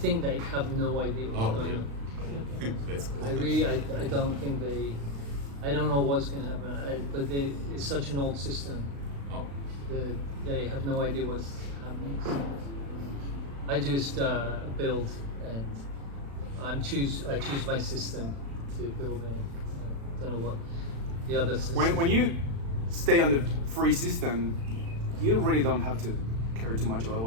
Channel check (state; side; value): late; left; 36 ms